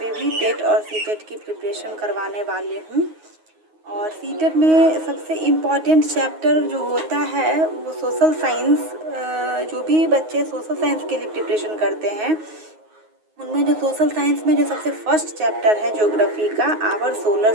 पे भी टेट और सी टेट की प्रिपरेशन करवाने वाली हूँ। और सी टेट में सबसे इम्पॉर्टेंट चैप्टर जो होता है वो सोशल साइंस। जो भी बच्चे सोशल साइंस के लिए प्रिपरेशन करते हैं उनमें जो सोशल साइंस में जो सबसे फर्स्ट चैप्टर है ज्योग्राफी का, our solar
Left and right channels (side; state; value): left; late; 9.5 ms